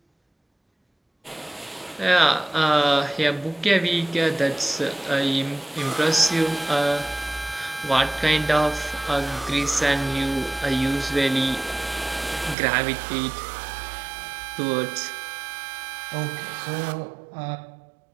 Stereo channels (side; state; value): left; drops out; at 12.6 s